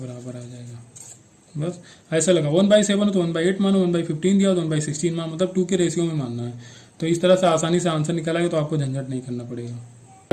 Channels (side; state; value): both; identical; correlation 1.00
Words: आ जाएगा। बस ऐसा लगा, 1/7 है तो 1/8 मानो, 1/15 दिया तो 1/16 मानो, मतलब 2 के रेशियो में मानना है। तो इस तरह से आसानी से आंसर निकालेगा, तो आपको झंझट नहीं करना पड़ेगा।